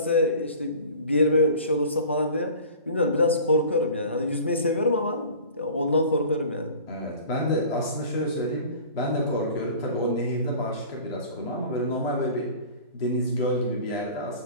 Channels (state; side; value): inverted; both; correlation -0.43